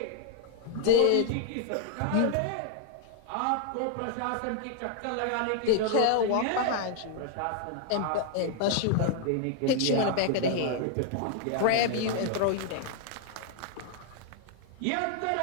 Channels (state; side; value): different; both; correlation 0.00